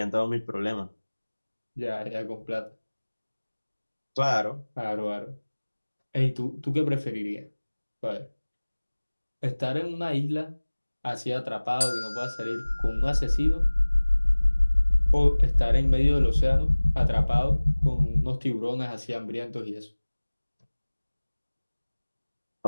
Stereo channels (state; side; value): inverted; both; correlation -1.00